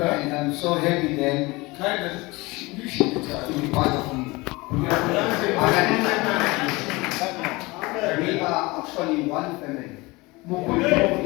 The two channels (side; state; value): right; quieter; 23.1 dB